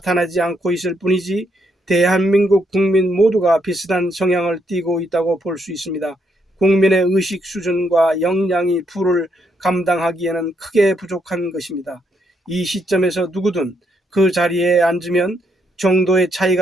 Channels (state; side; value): normal; both; correlation 0.76